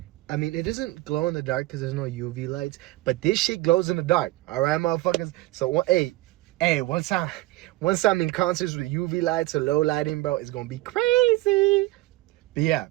I mean, it doesn't glow in the dark because there's no UV lights, but this shit glows in the dark. All right, motherfuckers. So, hey, once I'm in concerts with UV lights or low lighting, bro, it's gonna be crazy. But yeah,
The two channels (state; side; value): quieter; left; 19.1 dB